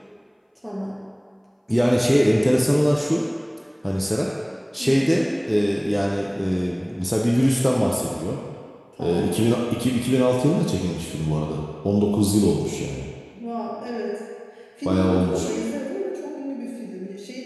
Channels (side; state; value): both; identical; correlation 1.00